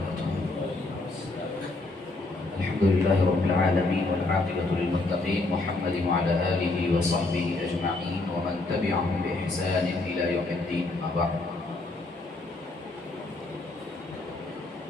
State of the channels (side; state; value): right; quieter; 3.1 dB